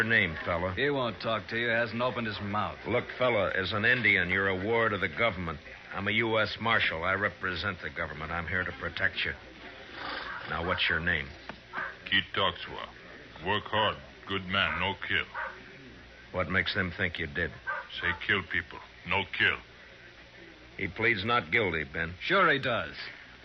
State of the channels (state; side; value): identical; both; correlation 1.00